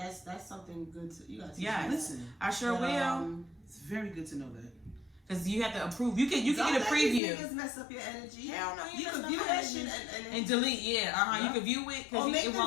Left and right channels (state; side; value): drops out; right; at 7.2 s